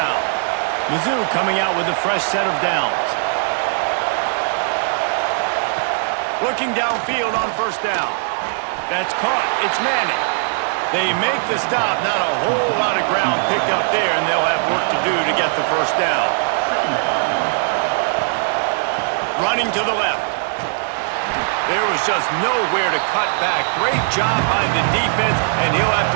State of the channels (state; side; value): silent; left; 66 dB below the other